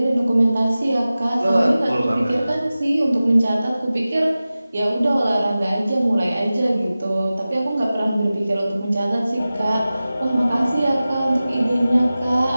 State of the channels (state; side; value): inverted; both; correlation -0.96